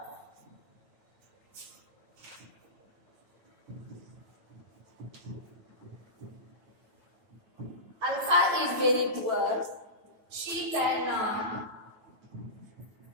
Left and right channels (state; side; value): late; left; 9.1 ms